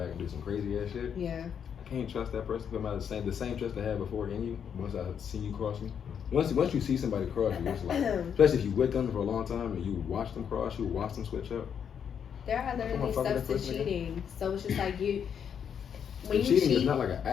and do some crazy ass shit. Yeah. I can't trust that person. Put the same trust I had before in you. Once I see you cross me, once you see somebody cross you, it's like, especially if you with them for a long time and you watch them cross, you watch them switch up. There are literally fuck with steps that to person again? cheating. So it's just like when you Cheating cheat, is not like an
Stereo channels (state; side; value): quieter; right; 7.8 dB